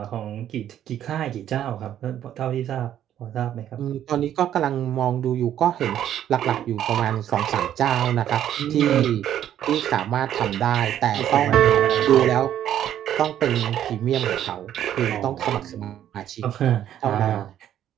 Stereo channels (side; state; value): left; quieter; 10.9 dB